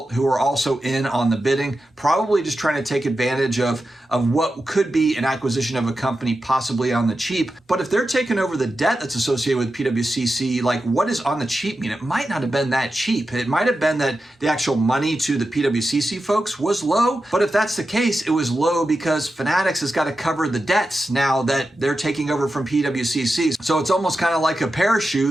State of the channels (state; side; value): normal; both; correlation 0.91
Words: who are also in on the bidding, probably just trying to take advantage of what could be an acquisition of a company possibly on the cheap. But if they're taking over the debt that's associated with PWCC, like what does on the cheap mean? It might not have been that cheap. It might have been that the actual money to the PWCC folks was low. But if that's the case, it was low because Fanatics has got to cover the debts now that they're taking over from PWCC. So it's almost kind of like a